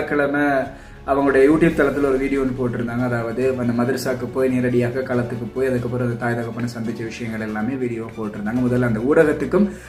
அவங்களுடைய யூடியூப் தளத்தில் ஒரு வீடியோ ஒன்று போட்டிருந்தாங்க. அதாவது அந்த மதரசாக்கு போய் நேரடியாக களத்துக்கு போய் அதுக்கப்புறம் அந்த தாய் தகப்பனை சந்திச்ச விஷயங்கள் எல்லாமே வீடியோ போட்டிருந்தாங்க. முதல்ல அந்த ஊடகத்துக்கும்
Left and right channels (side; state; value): both; identical; correlation 1.00